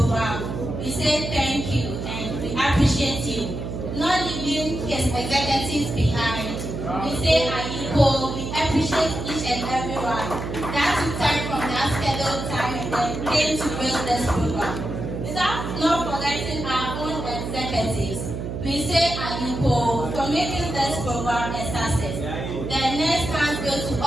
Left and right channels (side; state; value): right; noise; hum, 5 dB below the sound